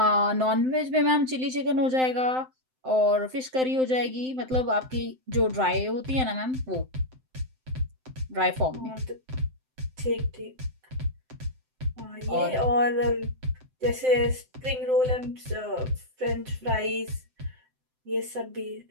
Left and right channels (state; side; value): late; left; 7.8 ms